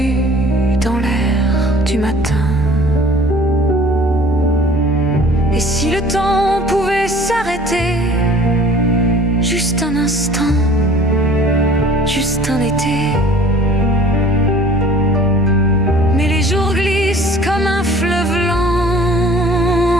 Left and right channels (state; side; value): normal; both; correlation 0.50